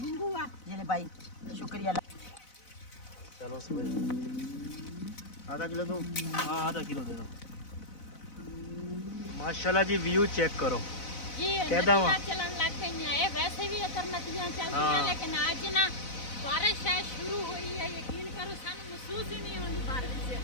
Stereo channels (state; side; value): late; right; 4.0 ms